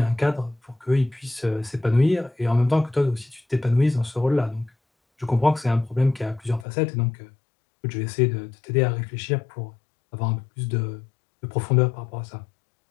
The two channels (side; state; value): right; drops out; at 6.7 s